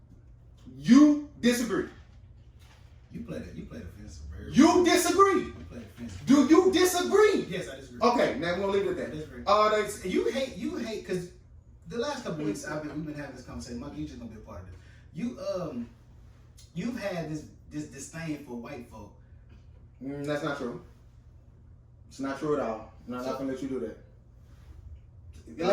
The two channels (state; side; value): identical; both; correlation 1.00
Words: You disagree. You played offensive. You disagree. You played offensive. Do you disagree? Yes, I disagree. Okay, now we're going to leave it at I disagree. that. You hate, because the last couple of weeks we've been having this conversation. Mike, you just gonna be a part of this. You've had this disdain for white folk. That's not true. It's not true at all. I'm not going to let you do that.